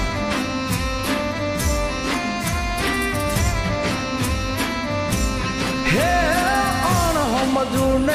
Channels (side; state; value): both; identical; correlation 1.00